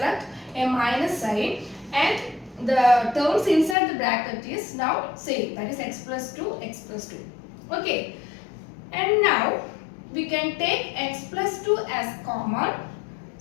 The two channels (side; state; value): right; drops out; at 3.8 s